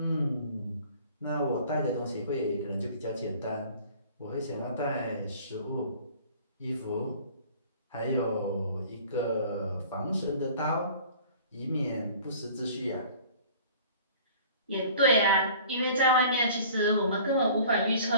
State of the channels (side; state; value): both; inverted; correlation -0.48